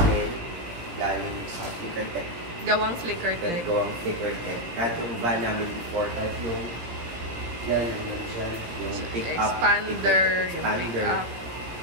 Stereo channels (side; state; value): left; late; 17 ms